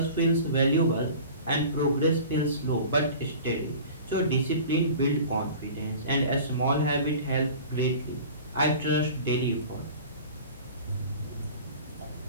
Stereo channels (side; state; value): both; inverted; correlation -0.40